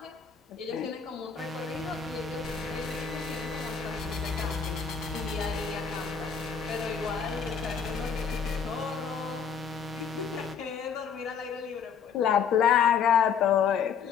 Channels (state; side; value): quieter; right; 6.8 dB